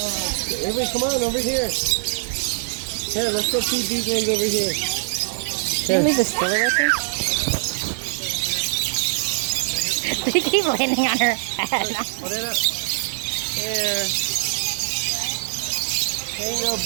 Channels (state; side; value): silent; left; digital silence